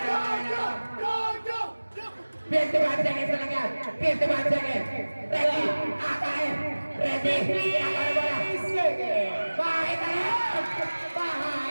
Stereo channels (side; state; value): both; inverted; correlation -1.00